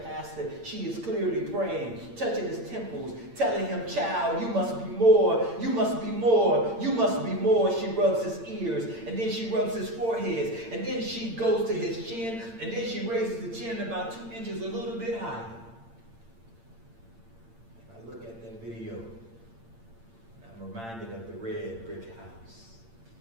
She is clearly praying, touching his temples, telling him, child, you must be more, you must be more, you must be more. She rubs his ears, and then she rubs his forehead, and then she goes to his chin, and then she raises the chin about 2 inches a little bit higher. Video, I'm reminded of the red brick house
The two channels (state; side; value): late; left; 8.7 ms